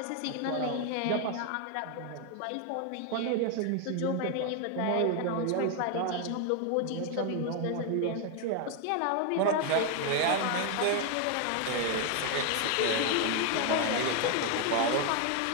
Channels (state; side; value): different; both; correlation 0.01